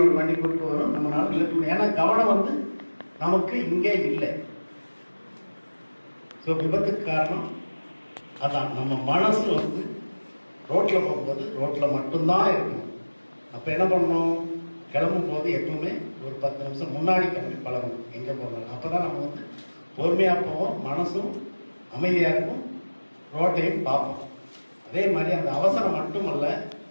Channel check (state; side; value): inverted; both; correlation -1.00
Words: ஒரு வண்டி கூட்டு வரும், நம்மளால நிறுத்த. ஏன்னா கவனம் வந்து நமக்கு இங்கே இல்லை. ஸோ விபத்துக்கு காரணம் அதான். நம்ம மனசு வந்து ரோட்டில் போகும்போது ரோட்டில் மட்டும்தான் இருக்கணும். அப்போ என்ன பண்ணணும், கிளம்பும் போது எப்பவுமே ஒரு 10 நிமிஷம் முன்னாடி கிளம்பி பழகணும் எங்கே போகணும். அப்போ தான் நம்ம வந்து பொறுமையாக போவோம், மனசும் அமைதியாக இருக்கும், ரோட்டையும் பார்ப்போம். அதே மாதிரி அந்த அவசரம் மட்டுமல்ல,